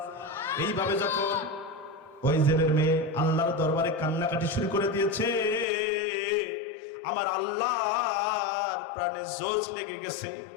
এইভাবে যখন ওই জেলের মেয়ে আল্লাহর দরবারে কান্নাকাটি শুরু করে দিয়েছে, আমার আল্লাহর প্রাণে জোশ লেগে গেছে।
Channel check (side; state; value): right; drops out; at 5.7 s